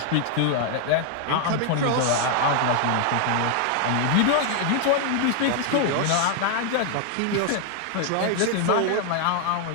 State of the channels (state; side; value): different; both; correlation 0.00